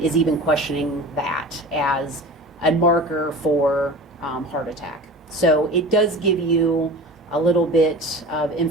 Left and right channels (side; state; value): both; normal; correlation 0.36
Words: is even questioning that as a marker for heart attack. So it does give you a little bit of